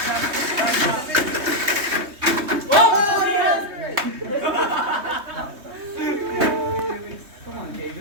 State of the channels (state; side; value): late; left; 3.2 ms